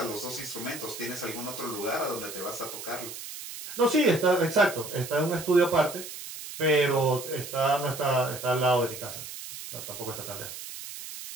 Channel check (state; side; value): noise; right; hiss, 10 dB below the sound